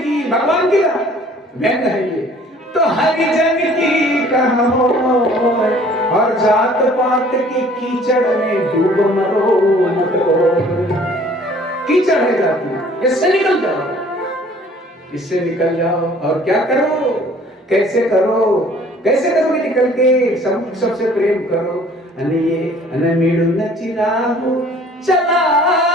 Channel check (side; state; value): both; normal; correlation 0.54